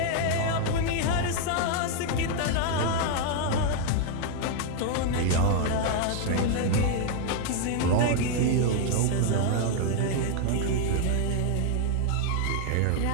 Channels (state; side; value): different; both; correlation 0.00